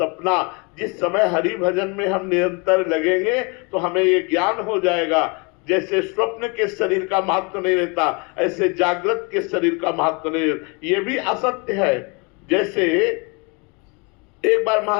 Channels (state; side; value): quieter; right; 31.2 dB